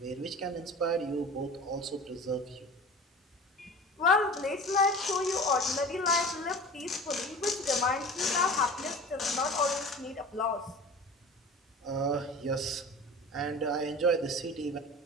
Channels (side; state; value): both; normal; correlation 0.38